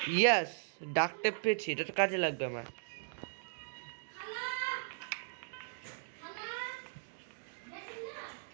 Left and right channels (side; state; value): left; silent; digital silence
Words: ইয়াস, ডাক টেপ পেয়েছি, এটা তো কাজে লাগবে আমার।